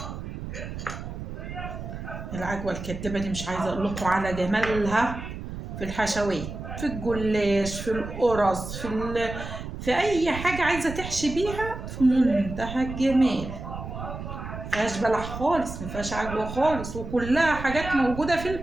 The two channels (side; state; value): right; noise; rumble, 8 dB below the sound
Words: العجوه الكدابه دي مش عايزه اقول لكم على جمالها في الحشوات، في الجلاش، في القرص، في اي حاجه عايزه تحشي بيها، في منتهى الجمال. مفيهاش بلح خالص، مفيهاش عجوه خالص، وكلها حاجات موجوده في